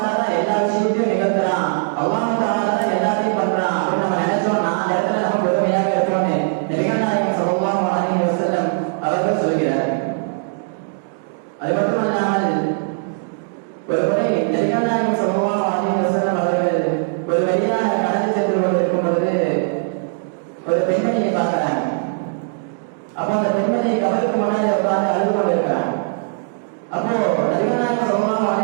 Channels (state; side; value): silent; left; digital silence